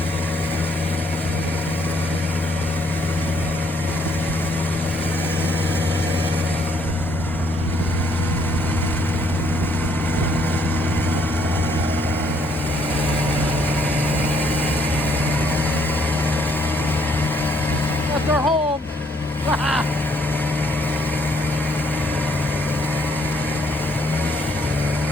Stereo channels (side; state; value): both; normal; correlation 0.68